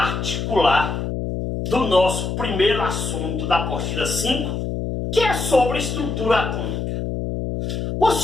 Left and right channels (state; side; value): noise; left; hum, 3 dB below the sound